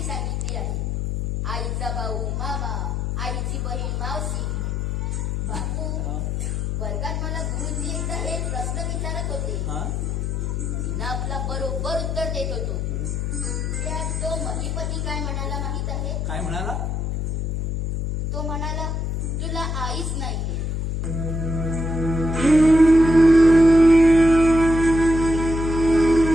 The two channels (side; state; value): left; noise; hum, 1 dB below the sound